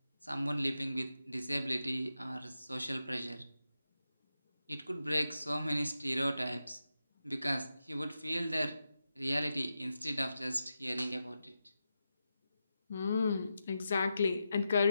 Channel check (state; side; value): inverted; both; correlation -0.89